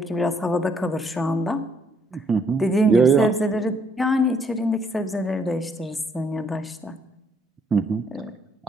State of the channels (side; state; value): both; normal; correlation 0.68